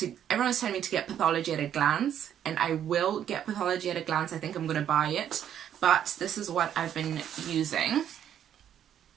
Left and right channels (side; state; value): left; quieter; 9.9 dB